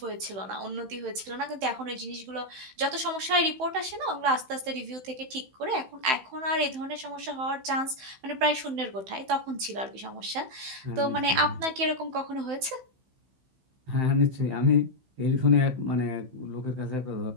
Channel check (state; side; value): late; left; 15 ms